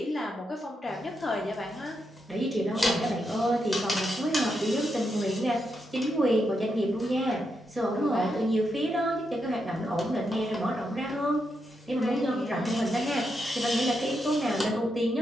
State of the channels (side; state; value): both; normal; correlation 0.83